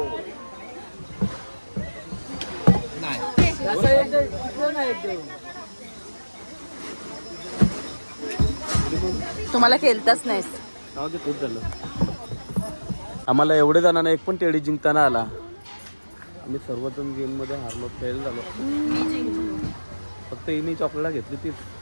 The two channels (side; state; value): both; inverted; correlation -1.00